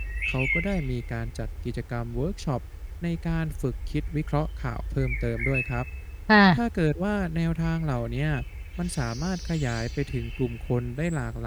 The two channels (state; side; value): identical; both; correlation 1.00